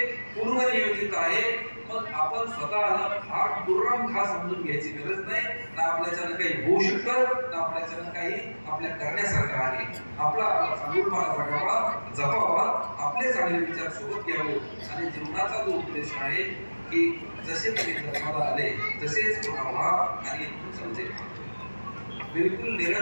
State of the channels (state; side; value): inverted; both; correlation -1.00